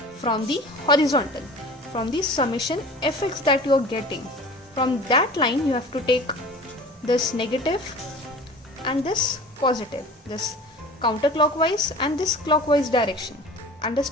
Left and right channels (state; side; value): normal; both; correlation 0.41